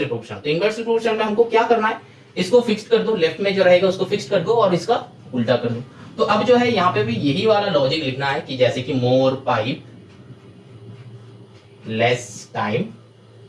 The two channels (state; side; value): identical; both; correlation 1.00